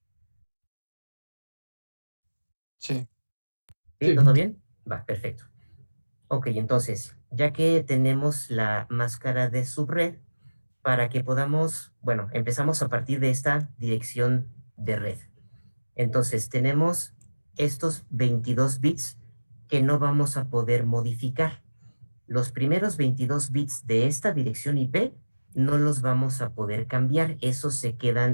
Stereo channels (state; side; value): inverted; both; correlation -1.00